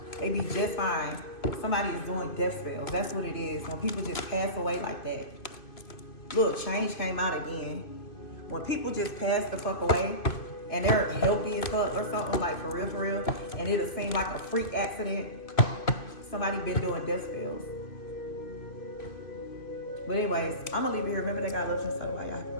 They be just fine. Somebody is doing death spells. That's what it is. When people just pass away like that. Look, change came out again. When people just pass the fuck away and they're healthy as fuck or something, like for real, and it'll seem like a freak accident, somebody been doing death spells. But anyways, I'm gonna leave it here. Remember that God loves you inside of y'all.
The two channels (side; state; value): right; late; 2.5 ms